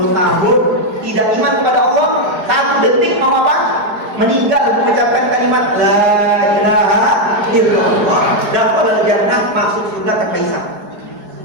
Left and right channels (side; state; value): left; late; 4.8 ms